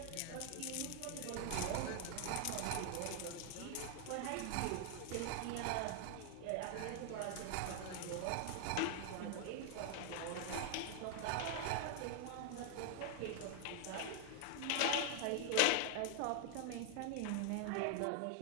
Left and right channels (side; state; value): both; different; correlation 0.00